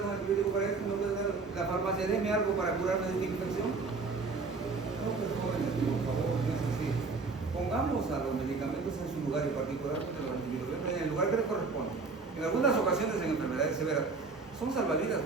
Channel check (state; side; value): quieter; left; 4.3 dB